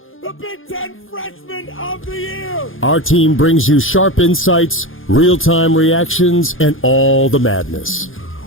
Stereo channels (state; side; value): late; right; 0.59 ms